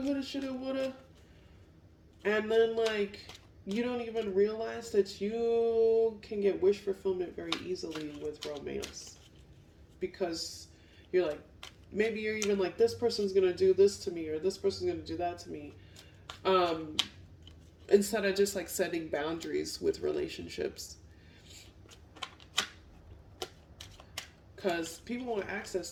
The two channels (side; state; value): both; identical; correlation 1.00